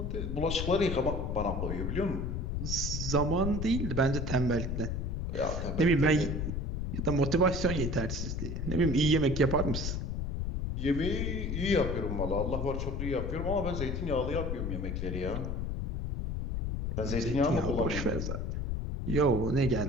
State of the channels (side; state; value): left; noise; rumble, 2 dB below the sound